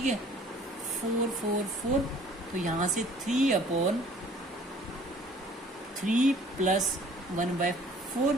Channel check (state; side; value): normal; both; correlation 0.54